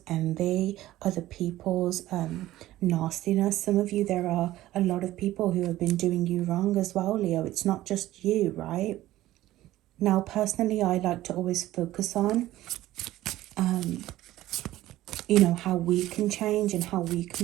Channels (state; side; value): quieter; left; 15.4 dB